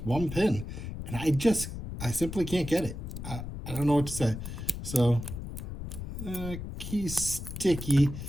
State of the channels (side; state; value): left; noise; rumble, 8 dB below the sound